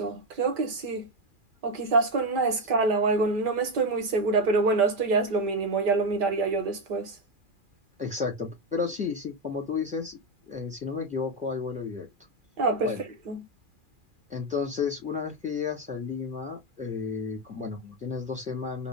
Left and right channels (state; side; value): late; left; 2.4 ms